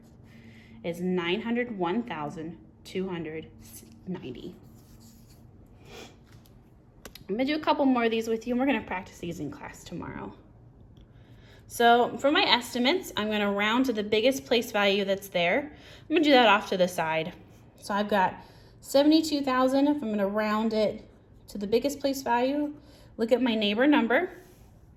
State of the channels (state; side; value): identical; both; correlation 1.00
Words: is 901,290. I'm going to do a couple more of these with you, and we're going to practice these in class tomorrow. So for my estimates, I'm going to round to the biggest place value that's there. I'm going to do that off to the side. So I've got 72,000. If I'm going to round it to the biggest place value, look at my neighbor number.